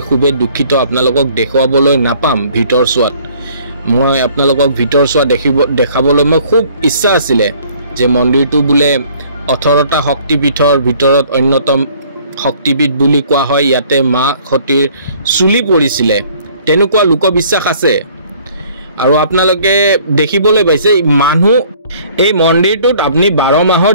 খুবে দুখিত আপোনালোকক দেখুৱাবলৈ নাপাম ভিতৰ চোৱাত মই আপোনালোকক ভিতৰ চোৱা দেখাবলৈ মই খুব ইচ্ছা আছিল যে মন্দিৰটো বুলে 18টা শক্তিপীঠৰ ভিতৰত অন্যতম শক্তিপীঠ বুলি কোৱা হয় ইয়াতে মা সতীৰ চুলি পৰিছিল তেনেকুৱা লোকবিশ্বাস আছে আৰু আপোনালোকে দেখিবলৈ পাইছে মানুহ এই মন্দিৰটোত আপুনি 12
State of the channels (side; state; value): both; inverted; correlation -0.57